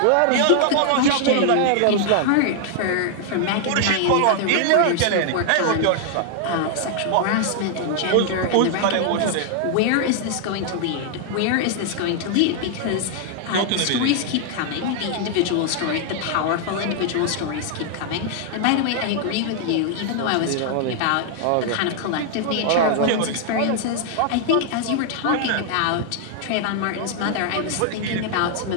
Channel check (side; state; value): both; different; correlation 0.00